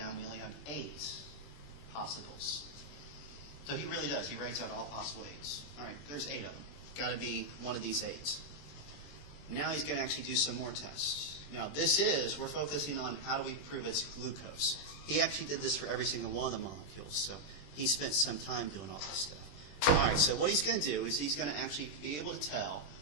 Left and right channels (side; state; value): right; late; 21 ms